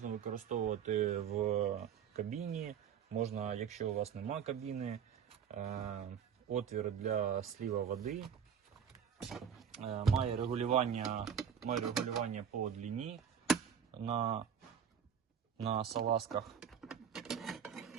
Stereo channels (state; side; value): quieter; left; 7.8 dB